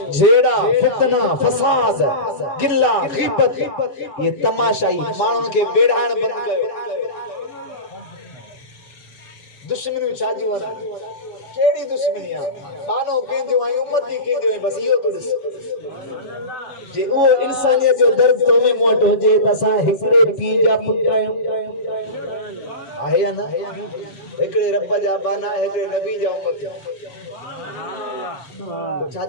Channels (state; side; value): late; right; 7.1 ms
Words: जेड़ा फितना फसाद गिल्ला गीबत ये तमाशाई माण्हुनि के बेड़ाण बंद कयो दुश्मनी छाजी वना केड़ी दुश्मनी आ बानो केंजो आई उम्मती केंजो आई बस इयो तो दिस जे वो इंसानियत जो दर्द तो में मोट हो जे तसा हिकड़े पी जा पुटायो आहे ना हिकड़े रब जा बाना हिकड़े नबी जा उम्मत तो